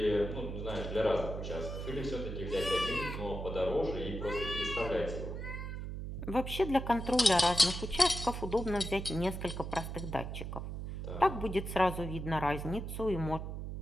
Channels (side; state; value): right; noise; hum, 6 dB below the sound